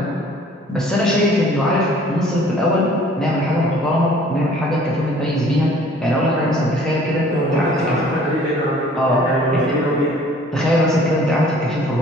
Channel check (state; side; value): normal; both; correlation 0.53